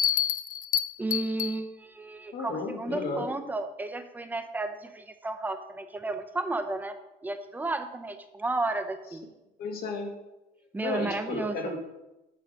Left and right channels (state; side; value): normal; both; correlation 0.54